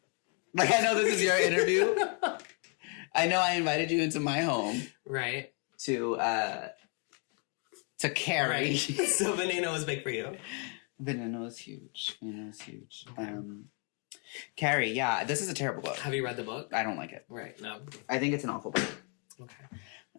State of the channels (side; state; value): right; quieter; 38.6 dB